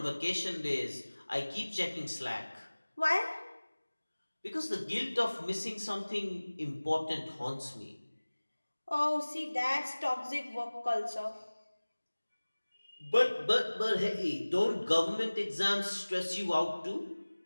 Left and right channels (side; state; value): both; inverted; correlation -1.00